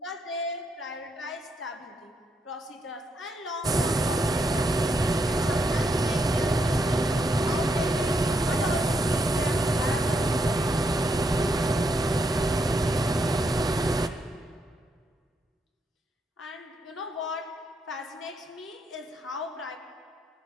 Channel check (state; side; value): normal; both; correlation 0.78